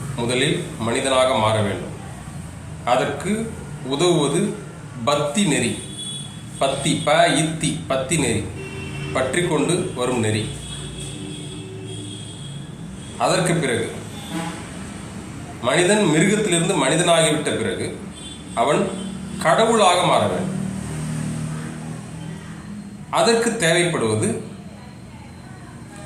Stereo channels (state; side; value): identical; both; correlation 1.00